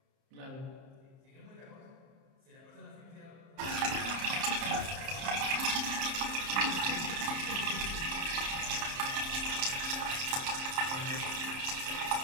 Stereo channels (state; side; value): late; left; 30 ms